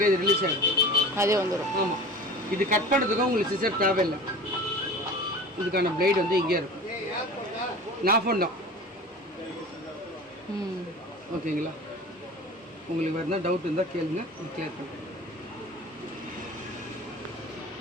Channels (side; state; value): both; normal; correlation 0.38